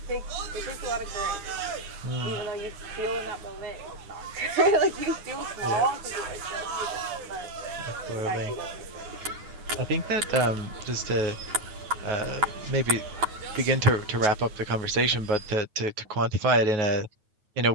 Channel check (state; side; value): late; left; 9.2 ms